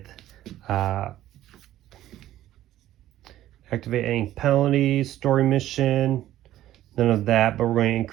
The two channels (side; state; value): left; quieter; 13.6 dB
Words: activate any penalties, story mission, none of that, but we're going to